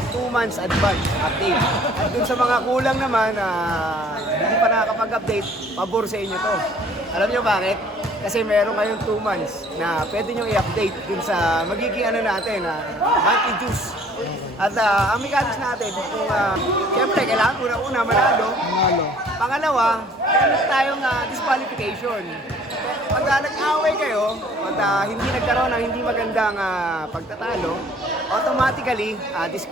2 months advance update. At dun sa mga kulang naman, hindi pa nakakapag-update, pabor sa inyo to. Alam nyo bakit? Kasi meron ngayon 2 months na pwede nyo i-update dun sa magiging natin, monthly juice. At ang mechanics natin, kung siyempre kailangan una-una manalo. Pangalawa, meron tayong disqualification. Pag nag-away kayo, at hindi nagkaroon ng hindi magandang pagtatalo, automatically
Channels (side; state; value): both; normal; correlation 0.55